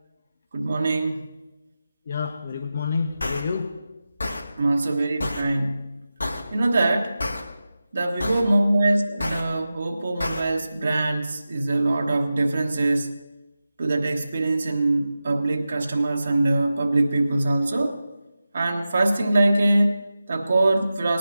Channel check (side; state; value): both; inverted; correlation -0.93